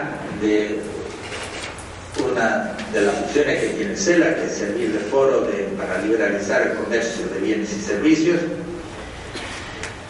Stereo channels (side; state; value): both; identical; correlation 1.00